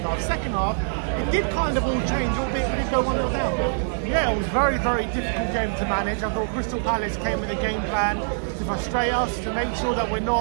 half. Second half, it did kind of all change, albeit we did go 1-0 down. Yeah, it was a very, very difficult game to manage. I thought Crystal Palace came with a game plan to frustrate us, to make sure that we're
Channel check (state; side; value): silent; left; digital silence